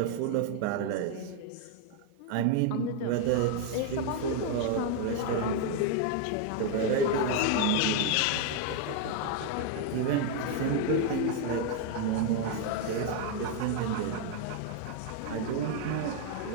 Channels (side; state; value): both; different; correlation 0.01